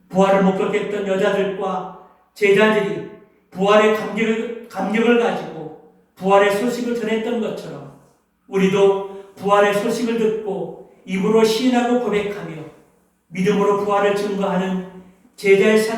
부활을 못 겪겠던 여자들과 제자들이 부활의 감격을 가지고 부활의 소식을 전했던 것처럼 우리도 부활의 소식을 듣고 입으로 시인하고 고백하며 믿음으로 부활을 증거하는 제자의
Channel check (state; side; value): identical; both; correlation 1.00